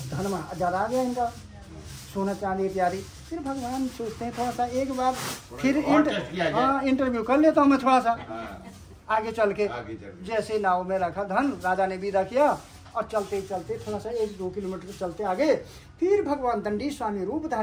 धन ज्यादा आ गया इनका, सोना चांदी इत्यादि। फिर भगवान सोचते हैं थोड़ा सा एक बार फिर इंटरव्यू कर लेता हूँ मैं थोड़ा सा आगे चल के। जैसे नाव में रखा धन, राजा ने विदा किया और चलते चलते थोड़ा सा 1-2 किलोमीटर चलते आगे, फिर भगवान दंडी स्वामी रूप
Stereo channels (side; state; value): both; identical; correlation 1.00